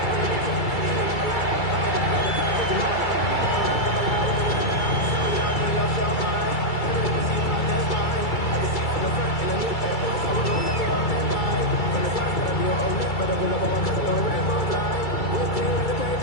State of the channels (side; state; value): right; late; 2.3 ms